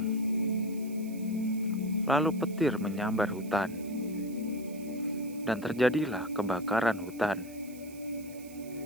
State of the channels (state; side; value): noise; right; hiss, 20 dB below the sound